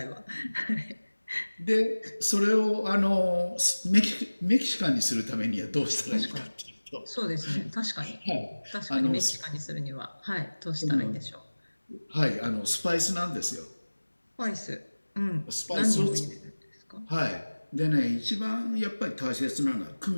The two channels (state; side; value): inverted; both; correlation -1.00